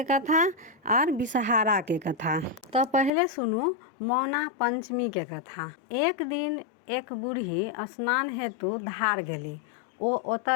कथा और विषहारा के कथा। तो पहले सुनू मौना पंचमी के कथा। एक दिन एक बूढ़ी स्नान हेतु धार गेली। ओ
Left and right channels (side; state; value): right; drops out; at 3.1 s